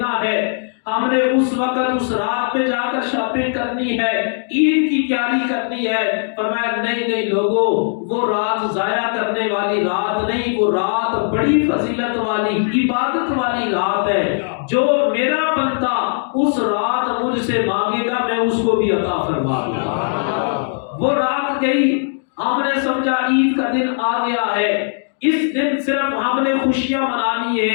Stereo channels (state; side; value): silent; right; digital silence